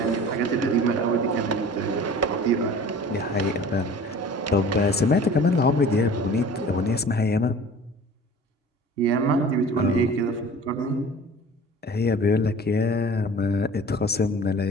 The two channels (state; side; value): normal; both; correlation 0.43